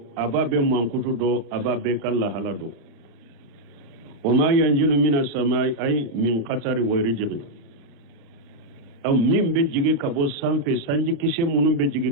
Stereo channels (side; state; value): left; late; 35 ms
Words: aba be mankutu do aba be kala halado o ma yanjilu minas samai ay min qatari wa rijqi aw min be jigi kabo sanfe sanji kise munum be jigi